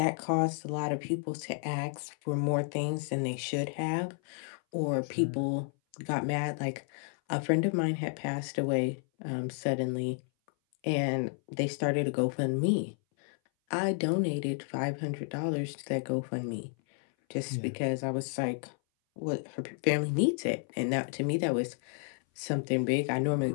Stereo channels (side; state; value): right; silent; 57 dB below the other